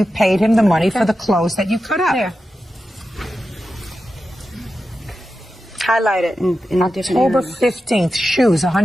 paid him the money for the clothes that you cut up. There. Highlight it in a different October area. 15th, shoes,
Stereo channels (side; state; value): both; normal; correlation 0.91